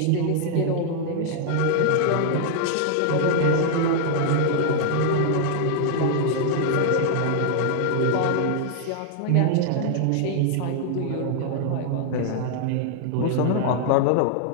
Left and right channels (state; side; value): different; both; correlation -0.01